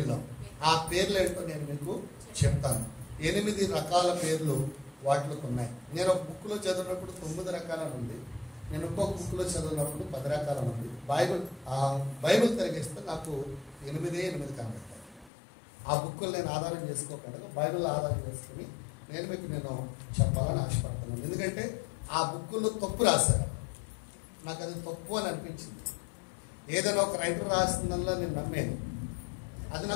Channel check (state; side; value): drops out; right; at 15.3 s